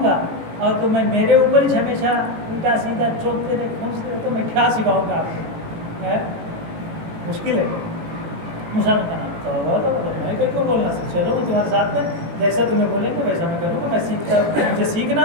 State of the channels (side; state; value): left; late; 18 ms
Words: گا. اور تو میں میرے اوپر ہی ہمیشہ الٹا سیدھا چوکتے رہے کھونچتے رہے تو میں کیا سکھاؤں گا آپ کو؟ مشکل ہے. موسیٰ نے کہا تو میں کہیں کو بولنا چلو میں تمہارے ساتھ میں جیسا تمہیں بولیں گے ویسا میں کروں گا. میں سیکھتا ہوں، مجھے